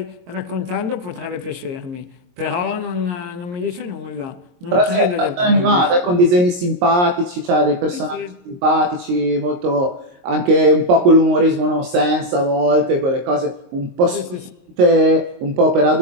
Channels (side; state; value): left; late; 22 ms